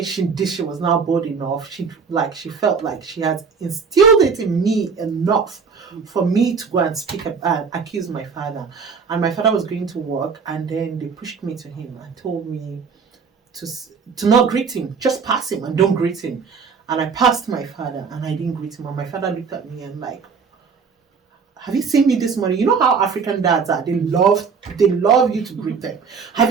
she was now bold enough. She felt like she had instilled it in me enough for me to go and speak and accuse my father. And my father was going to work, and then they pushed me to him and told me to not greet him, just pass him and don't greet him. And I passed my father and I didn't greet him. And my father looked at me and like, have you seen me this morning? You know how African dads are. They love you to greet them.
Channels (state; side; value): quieter; left; 5.6 dB